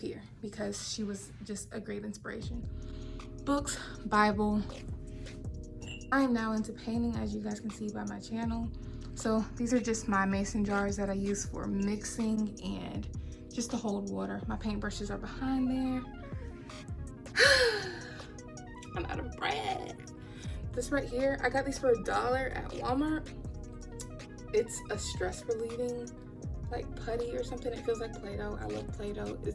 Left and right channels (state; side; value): identical; both; correlation 1.00